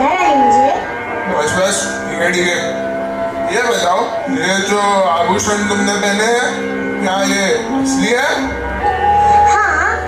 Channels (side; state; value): both; identical; correlation 1.00